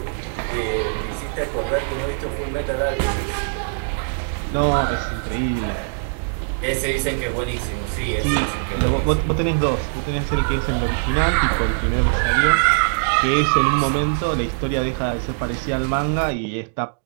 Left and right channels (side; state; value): left; silent; digital silence